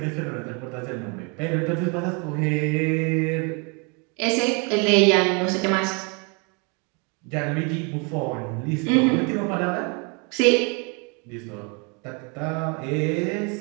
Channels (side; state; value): left; quieter; 33.1 dB